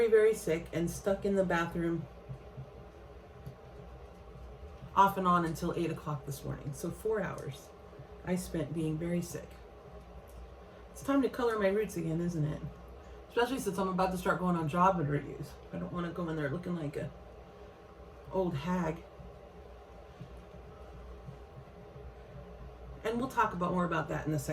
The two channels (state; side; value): identical; both; correlation 1.00